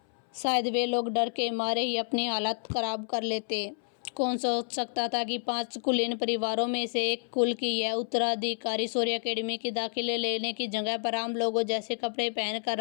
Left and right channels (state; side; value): silent; right; 58 dB below the other